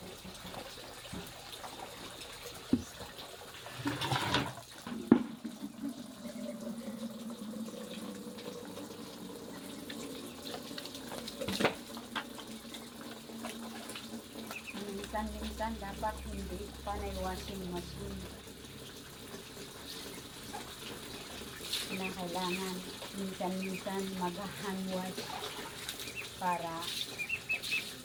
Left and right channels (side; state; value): both; identical; correlation 1.00